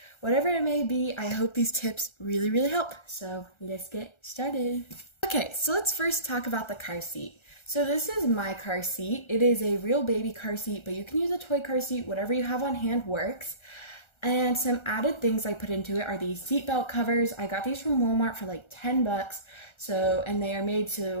whatever it may be. I hope these tips really help. So let's get started. Okay, so let's first talk about the car seat. So this is my car seat. It is a real baby car seat, but you can use a toy car seat. Whatever you have on hand works. And some added things I put into it are these seatbelt covers. I got these from Walmart for like 10 bucks. And they are made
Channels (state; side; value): late; right; 1.3 ms